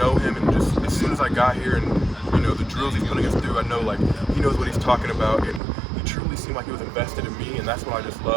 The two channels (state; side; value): drops out; left; at 5.6 s